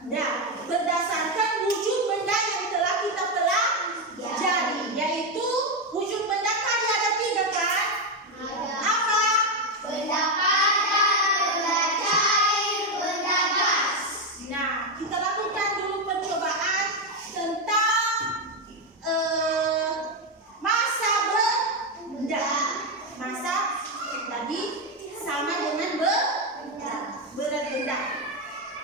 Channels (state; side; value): normal; both; correlation 0.07